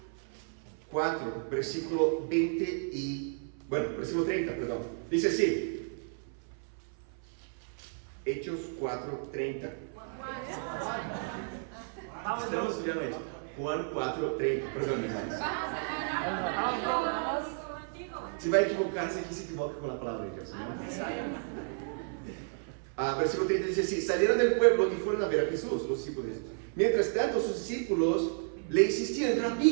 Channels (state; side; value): silent; left; 56 dB below the other